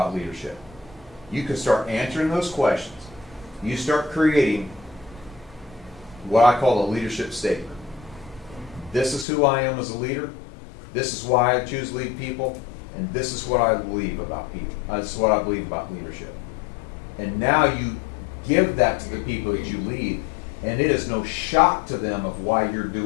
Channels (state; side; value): drops out; right; at 9.2 s